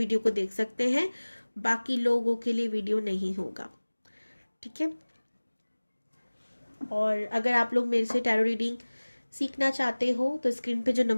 को देख सकते हैं, बाकी लोगों के लिए वीडियो नहीं होगा, ठीक है। और अगर आप लोग मेरे से टैरो रीडिंग सीखना चाहते हो तो स्क्रीन पे जो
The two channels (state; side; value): inverted; both; correlation -1.00